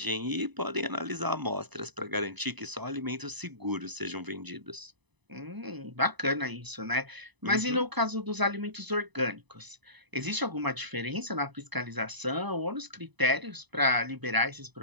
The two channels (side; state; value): left; late; 1.0 ms